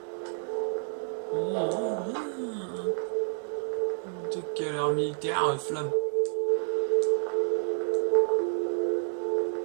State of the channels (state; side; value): silent; left; digital silence